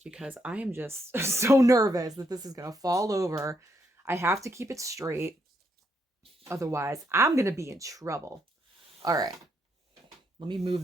because I am just so nervous that this is going to fall over. I have to keep it straight. Otherwise, I'm going to be in trouble. All right. Let me move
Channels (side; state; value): both; normal; correlation 0.76